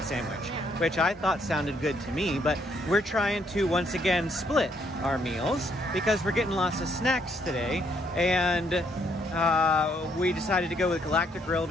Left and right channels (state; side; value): normal; both; correlation 0.70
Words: sandwich, which I thought sounded good to me, but we're trying to once again split our meals because we're getting lots of snacks today, and we decided to go with Galactic Grill